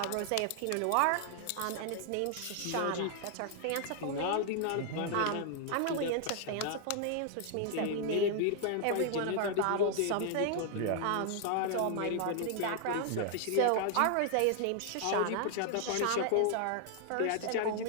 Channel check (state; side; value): different; both; correlation 0.00